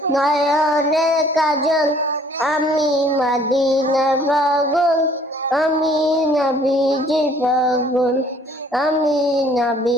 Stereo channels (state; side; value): normal; both; correlation 0.58